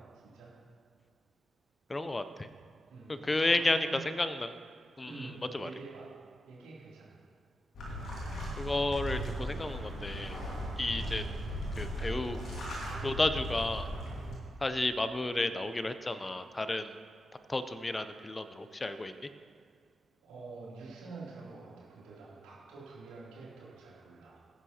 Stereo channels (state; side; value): normal; both; correlation 0.92